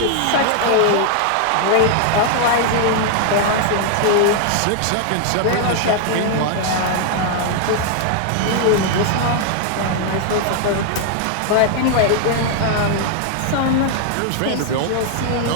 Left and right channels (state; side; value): different; both; correlation 0.00